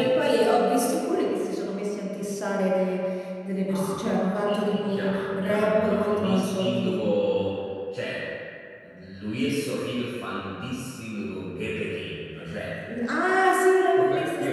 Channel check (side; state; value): both; identical; correlation 1.00